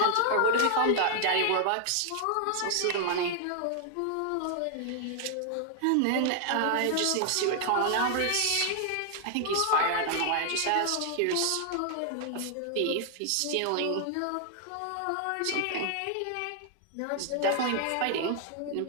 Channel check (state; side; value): different; both; correlation 0.00